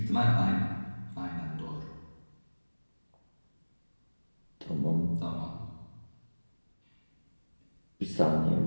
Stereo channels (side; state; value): both; inverted; correlation -1.00